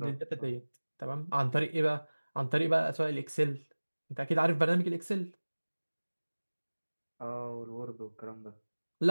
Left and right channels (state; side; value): inverted; both; correlation -1.00